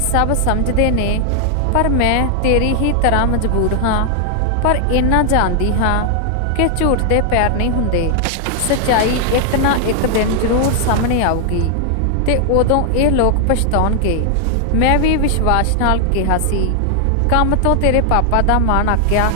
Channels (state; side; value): different; both; correlation 0.00